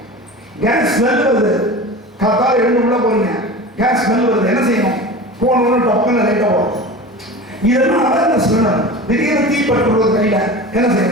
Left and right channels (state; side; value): normal; both; correlation 0.33